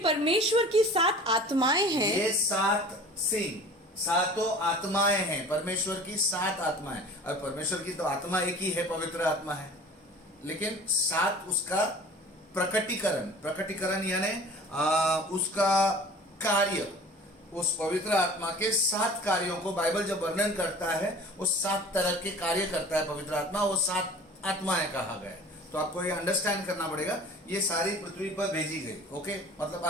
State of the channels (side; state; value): both; normal; correlation 0.43